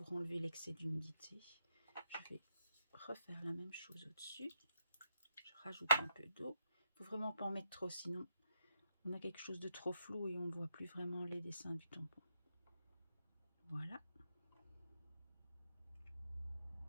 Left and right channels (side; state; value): both; inverted; correlation -0.79